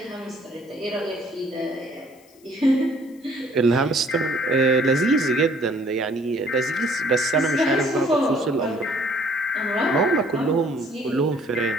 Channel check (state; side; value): noise; left; hiss, 30 dB below the sound